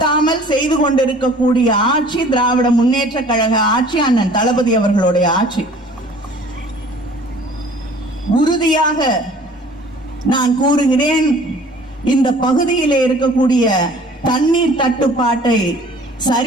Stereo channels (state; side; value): normal; both; correlation 0.50